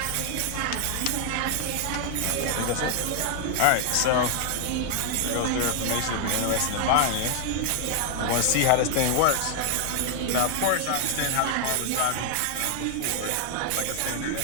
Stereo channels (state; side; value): different; both; correlation 0.00